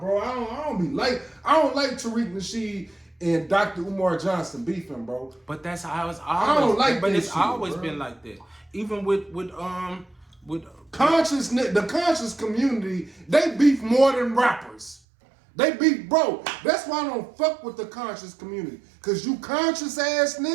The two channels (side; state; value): left; drops out; at 15.0 s